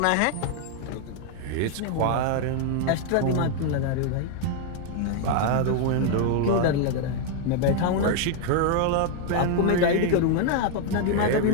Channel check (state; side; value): different; both; correlation 0.00